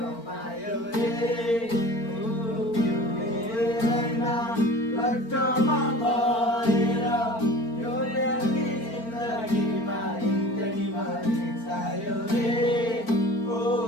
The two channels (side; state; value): right; late; 4.4 ms